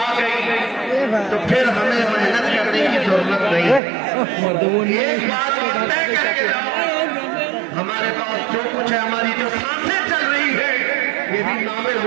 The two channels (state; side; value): drops out; left; at 3.8 s